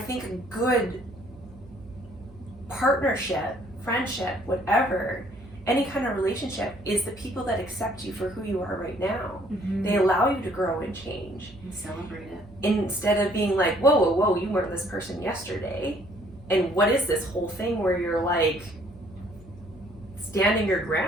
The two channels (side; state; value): right; noise; hum, 21 dB below the sound